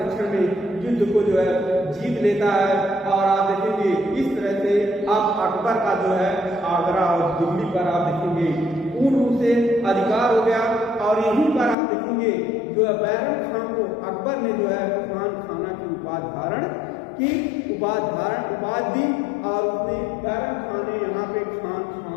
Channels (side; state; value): right; drops out; at 11.8 s